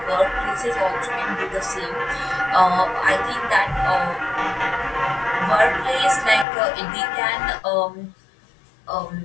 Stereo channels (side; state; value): right; drops out; at 6.5 s